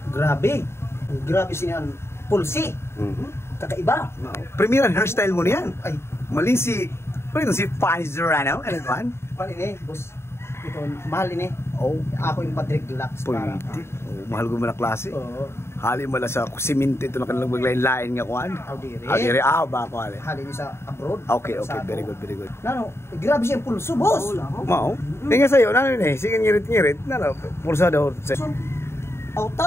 grabe. Grabe sinihan. Pulsi. Kakaiba. Premieran hairstyle mo niyan. Ay, Mali si... Ano si Fanny Zorano? Ano ba? pan ini, boss. Ito, mahal ini. Oh, Ako yung Patrick Deluxe para. pwede. Oh, mahal ko mo na klase. Oo. Hali mo lang sa siminto ito na kanilang maglain-lain nga kuhan. Audire. Hali rin. Ba ako hali. Hali niyo sa abroad. Okay, very good, very good. Nano, grabe siya yung pulso, boss. Mao? Tingnan sa'yo, ano yun eh, sige ngirit-ngirit. Ano, pulsa daw.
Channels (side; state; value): right; late; 0.12 ms